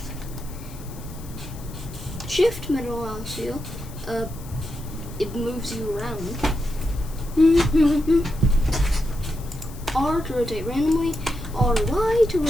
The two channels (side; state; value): left; noise; hiss, 20 dB below the sound